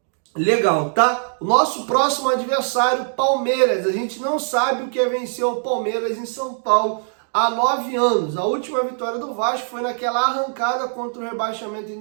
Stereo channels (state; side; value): silent; left; digital silence